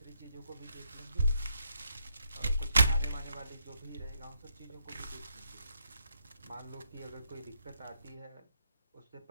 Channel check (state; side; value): inverted; both; correlation -0.79